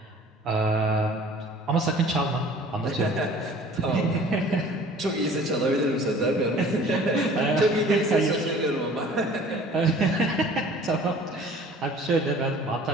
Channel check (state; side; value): normal; both; correlation 0.48